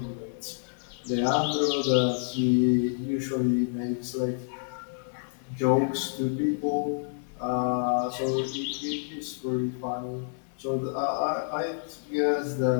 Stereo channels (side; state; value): right; silent; 59 dB below the other